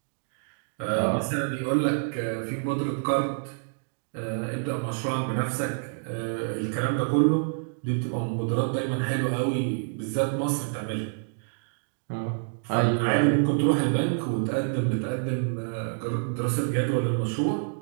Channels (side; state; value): left; silent; digital silence